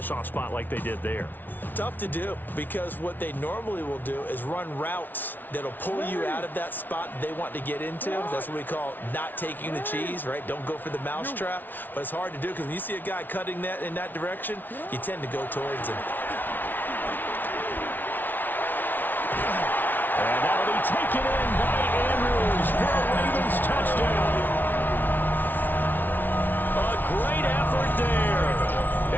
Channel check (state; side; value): late; right; 0.088 ms